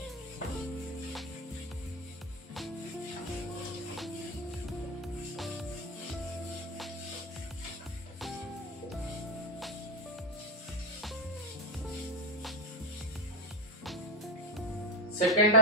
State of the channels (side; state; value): both; normal; correlation 0.07